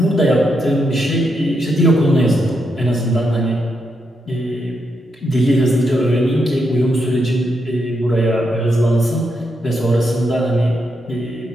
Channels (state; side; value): normal; both; correlation 0.82